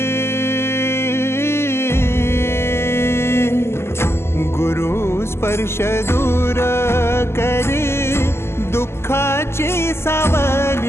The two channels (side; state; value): right; late; 0.12 ms